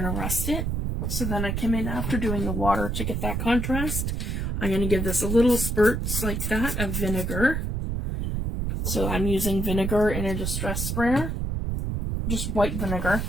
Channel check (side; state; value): right; noise; rumble, 1 dB below the sound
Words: to rust it. So then I came in after doing the water to get that contrast. I'm going to give this a little spurts like that of vinegar. So I'm using vinegar in a distress sprayer, just white vinegar.